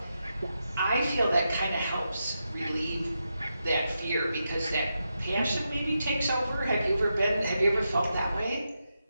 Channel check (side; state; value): both; inverted; correlation -0.86